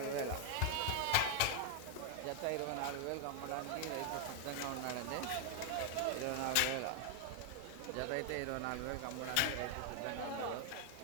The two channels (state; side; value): different; both; correlation 0.00